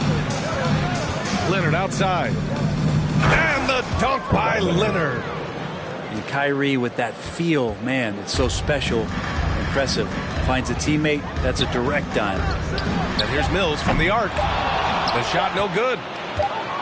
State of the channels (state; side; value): identical; both; correlation 1.00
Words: Leonard outside. And the dunk by Kawhi Leonard. And Kyrie with that feel, man, it's so special, impressive. Finds a teammate, that's a direct dime. And here's Mills from the arc. The shot no good.